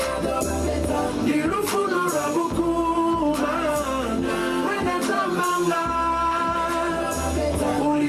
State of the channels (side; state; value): both; identical; correlation 1.00